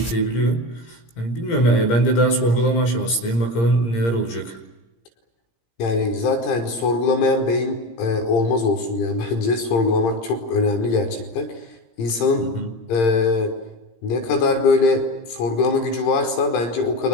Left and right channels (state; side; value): late; right; 17 ms